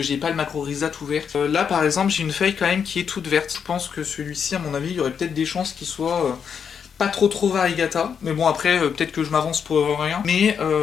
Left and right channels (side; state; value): right; quieter; 7.1 dB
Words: j'ai pas le Macrorhiza tout vert. Là par exemple, j'ai une feuille quand même qui est toute verte. Je pense que celui-ci, à mon avis, il y aurait peut-être des chances qu'il soit pas trop variegata, mais bon après peut-être que je m'avance pour rien, mais